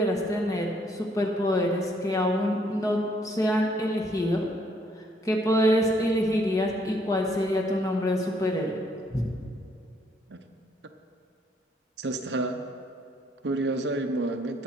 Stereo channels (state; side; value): normal; both; correlation 0.68